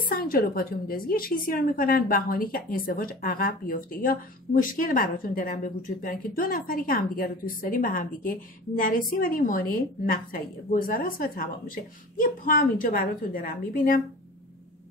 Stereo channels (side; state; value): both; normal; correlation 0.39